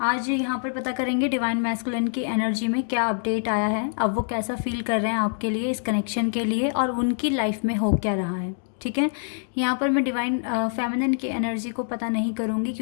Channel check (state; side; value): silent; right; digital silence